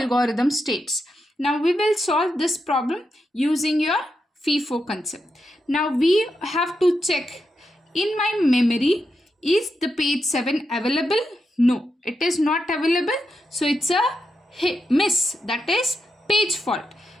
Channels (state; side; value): normal; both; correlation 0.86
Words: algorithm states. Now we will solve this problem using your FIFO concept. Now we have to check, in my memory is the page 7 available? No, it is not available, so it's a miss, that is page fault.